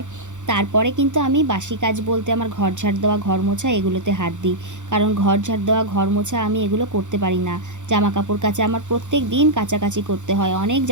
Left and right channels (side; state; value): left; late; 0.85 ms